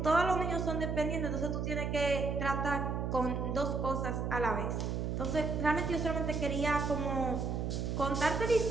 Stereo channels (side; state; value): right; noise; hum, 1 dB below the sound